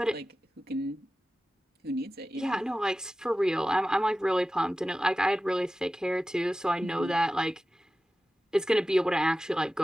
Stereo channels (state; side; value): normal; both; correlation 0.95